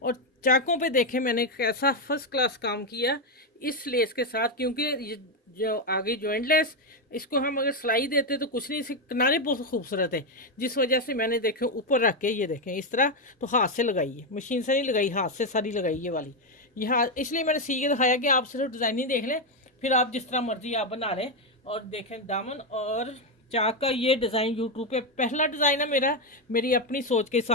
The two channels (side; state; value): both; normal; correlation 0.05